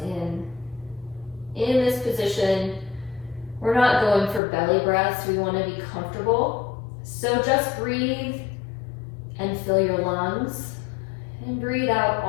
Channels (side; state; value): right; drops out; at 4.4 s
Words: in. In this position, we're not going for belly breaths. We want to be comfortable. So just breathe and fill your lungs. And breathe out